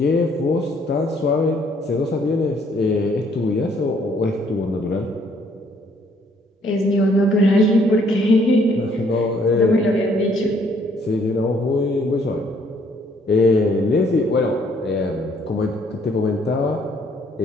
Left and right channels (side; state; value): both; normal; correlation 0.65